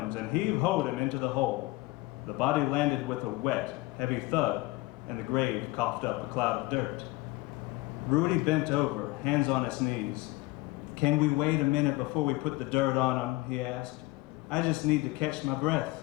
and heave-hoed him into the hole. The body landed with a wet, heavy thud, and the grave coughed up a cloud of dirt. Rudy bent over, hands on his knees. Can we wait a minute before we put the dirt on him, he asked. I just need to catch my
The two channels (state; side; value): quieter; right; 20.9 dB